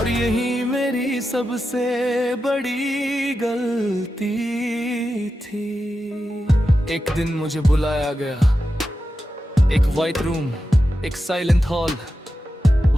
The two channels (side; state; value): both; normal; correlation 0.90